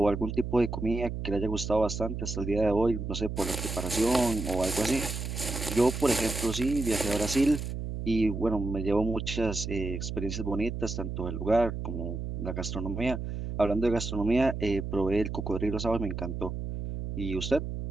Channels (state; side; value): noise; right; hum, 5 dB below the sound